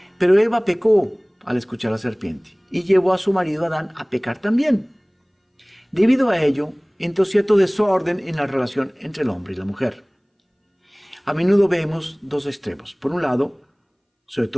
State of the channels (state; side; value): identical; both; correlation 1.00